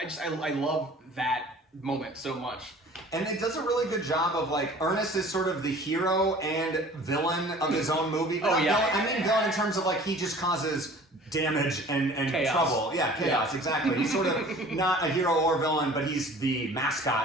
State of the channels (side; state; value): both; normal; correlation 0.47